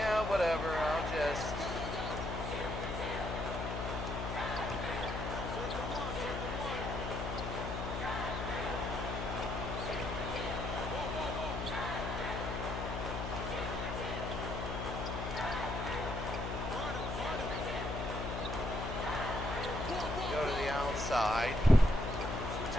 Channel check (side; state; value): left; noise; hum, 4 dB below the sound